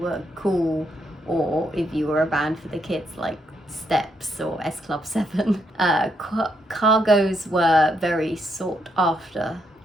cool or if you were a band for the kids like Steps or S Club 7. Cargos were very sought after,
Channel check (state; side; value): normal; both; correlation 0.77